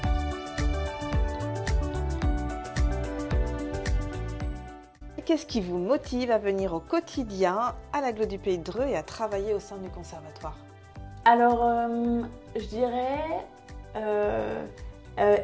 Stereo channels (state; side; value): identical; both; correlation 1.00